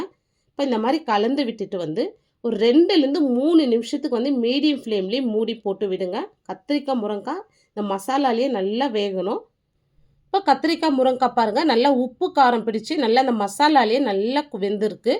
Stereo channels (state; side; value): identical; both; correlation 1.00